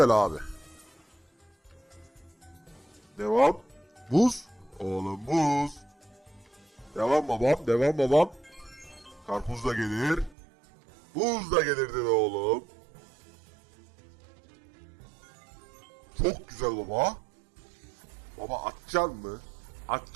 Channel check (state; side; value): drops out; left; at 10.4 s